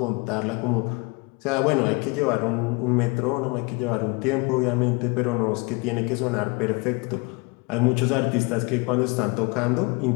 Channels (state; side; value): quieter; right; 28.0 dB